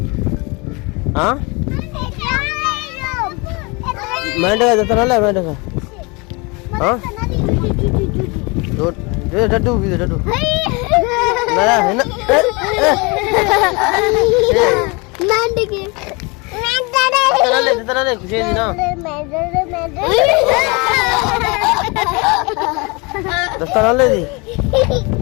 हाँ मेंढक का जतन ले मेंढक का हाँ दो डड्डू भी डड्डू मेरा है ना मेंढक के जतन ले खुशी दी ना जतन ले दी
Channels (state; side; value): quieter; right; 28.2 dB